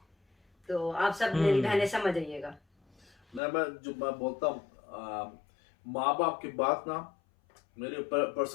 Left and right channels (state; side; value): drops out; right; at 3.4 s